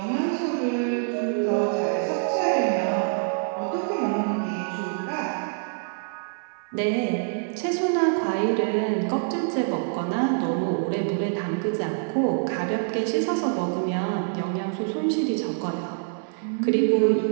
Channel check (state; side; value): silent; left; 61 dB below the other